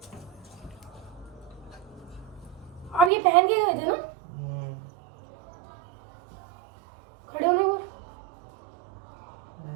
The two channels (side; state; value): left; drops out; at 3.1 s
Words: अब ये पहन के गए थे ना? खड़े होने को,